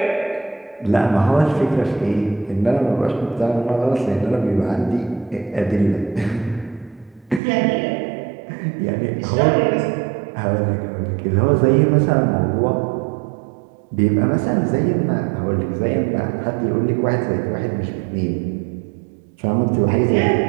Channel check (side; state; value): left; drops out; at 7.4 s